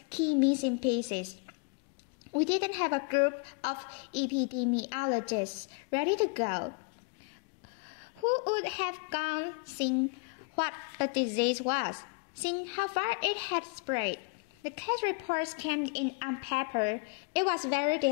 key missing pieces. We didn't have a group of epidemiologists ready to go, who would have gone seeing what the disease was, seeing how far it had spread. The case reports came in on paper. It was very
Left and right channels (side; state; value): right; quieter; 32.2 dB